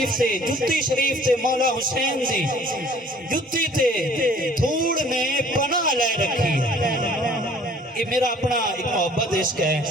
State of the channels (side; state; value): both; normal; correlation 0.53